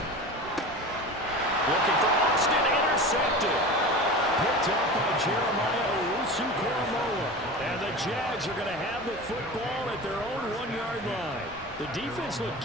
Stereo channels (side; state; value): both; normal; correlation 0.32